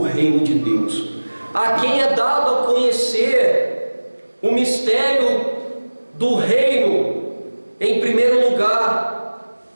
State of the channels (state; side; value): inverted; both; correlation -1.00